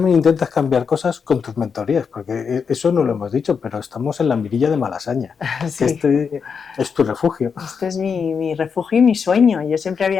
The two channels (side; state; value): right; quieter; 6.1 dB